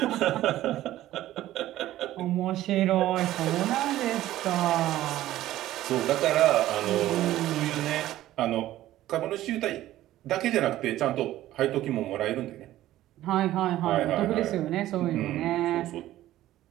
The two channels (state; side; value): quieter; left; 14.4 dB